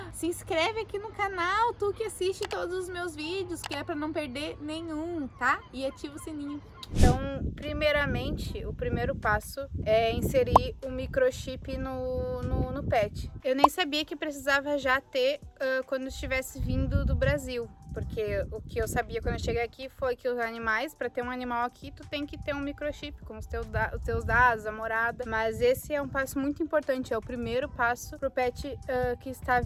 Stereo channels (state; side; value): identical; both; correlation 1.00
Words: se inscreve aqui no canal, tu que assiste todos os meus vídeos, que é pra não perder nenhum, tá? E ativa o sininho. Então, primeiramente, o primeiro passo é inserir o microchip no pet. Eu nem sabia que precisava já ter quando estivesse vindo do Brasil, porque o que eu sabia quando eu cheguei aqui foi que os animais, para ter um animal aqui, tu tem que ter um microchip com os teus dados, a morada. Mas esse é um passo muito importante, é o primeiro passo pro pet que está